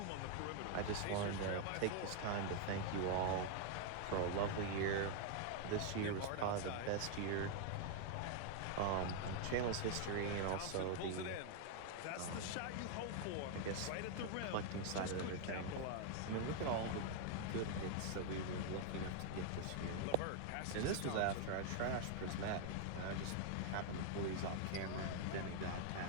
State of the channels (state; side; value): different; both; correlation 0.00